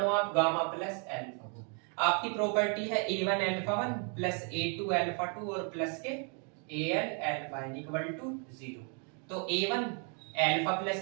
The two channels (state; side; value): quieter; left; 39.6 dB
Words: आप गामा प्लस अल्फा को। आपकी प्रॉपर्टी है a1 alpha 1 plus a2 alpha 2 और प्लस के an alpha n equal to 0। तो a1 alpha